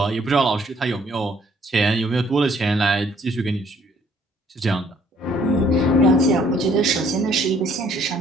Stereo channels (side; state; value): both; normal; correlation 0.63